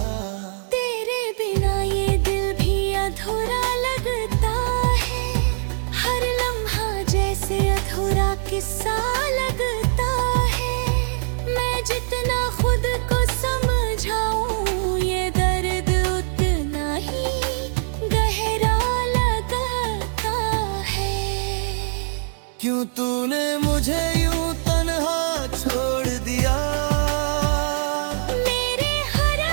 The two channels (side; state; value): left; silent; digital silence